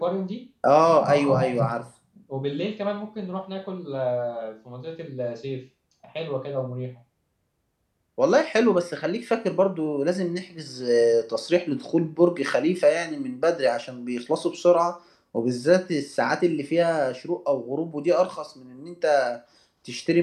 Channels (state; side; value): identical; both; correlation 1.00